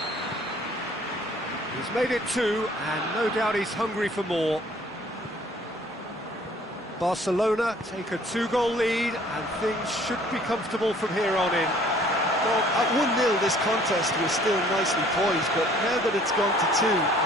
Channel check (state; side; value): normal; both; correlation 0.56